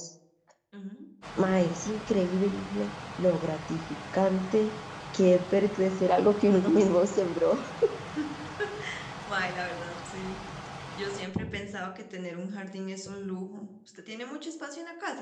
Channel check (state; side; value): identical; both; correlation 1.00